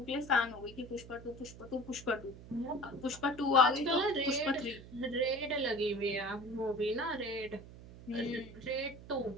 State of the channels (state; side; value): noise; right; hum, 16 dB below the sound